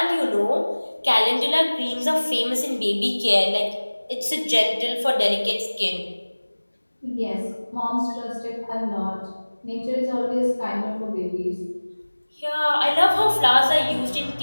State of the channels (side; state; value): both; inverted; correlation -1.00